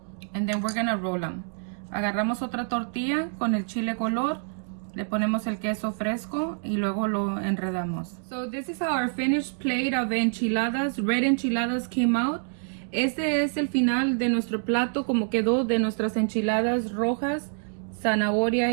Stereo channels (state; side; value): silent; left; digital silence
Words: And then we're gonna roll them. Agarramos otra tortilla con el chile color, le ponemos el queso fresco y luego lo enredamos. So this is how our finished plate of enchiladas, red enchiladas came out. Este es el final de nuestro plato, como quedó de nuestras enchiladas rojas,